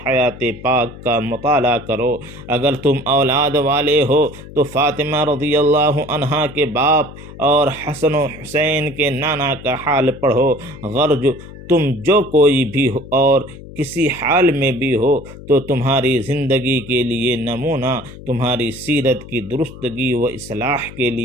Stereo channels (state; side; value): noise; left; hum, 16 dB below the sound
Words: حیات پاک کا مطالعہ کرو، اگر تم اولاد والے ہو تو فاطمہ رضی اللہ عنہا کے باپ اور حسن و حسین کے نانا کا حال پڑھو، غرض تم جو کوئی بھی ہو اور کسی حال میں بھی ہو تو تمہاری زندگی کے لیے نمونہ، تمہاری سیرت کی درستگی و اصلاح کے